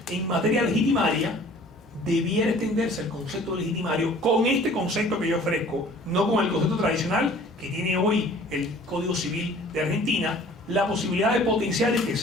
en materia legitimaria, debiera extenderse el concepto de legitimario con este concepto que yo ofrezco, no con el concepto tradicional que tiene hoy el Código Civil de Argentina, la posibilidad de potenciar y que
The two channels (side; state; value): both; normal; correlation 0.50